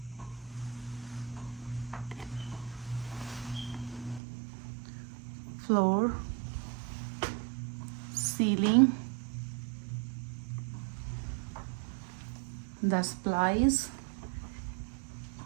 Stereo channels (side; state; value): left; drops out; at 4.2 s